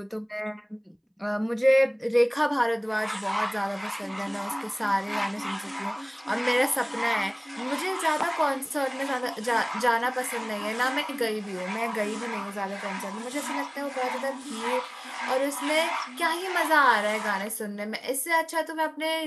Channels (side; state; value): both; identical; correlation 1.00